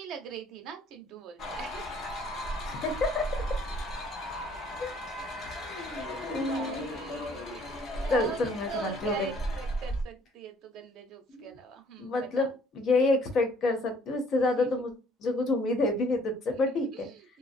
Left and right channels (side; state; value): both; normal; correlation 0.60